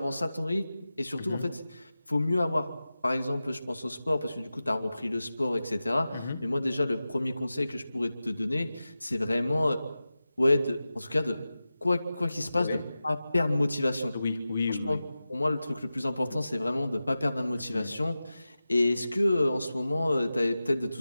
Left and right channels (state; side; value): inverted; both; correlation -0.94